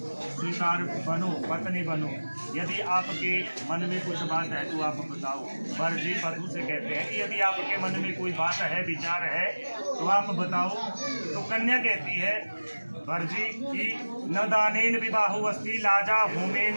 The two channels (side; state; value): both; inverted; correlation -1.00